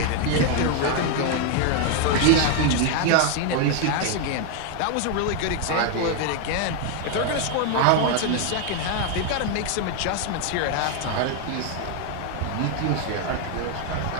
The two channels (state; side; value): different; both; correlation 0.01